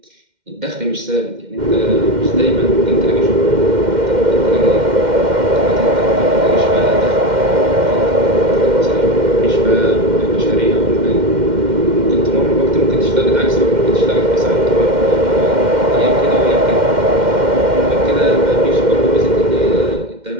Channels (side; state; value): left; late; 2.1 ms